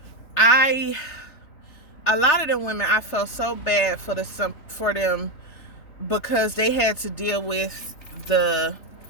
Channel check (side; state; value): right; late; 3.5 ms